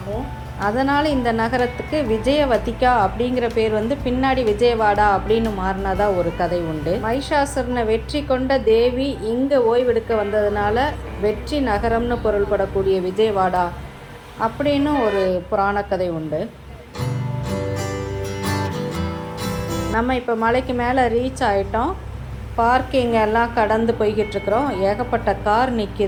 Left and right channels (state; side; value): identical; both; correlation 1.00